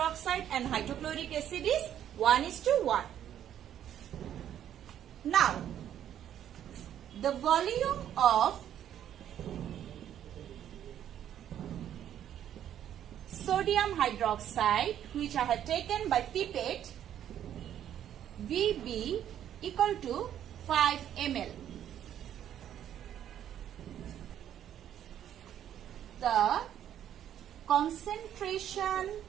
and hydrochloric acid is 1:1. Now, the volume of sodium hydroxide, which I have taken by pipette, VB equal to 5 ml. The concentration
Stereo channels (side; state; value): left; quieter; 10.5 dB